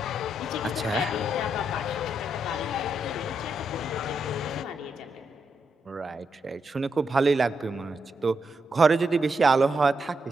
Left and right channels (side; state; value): both; normal; correlation 0.82